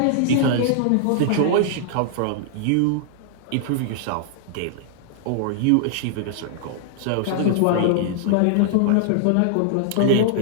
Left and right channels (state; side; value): different; both; correlation -0.01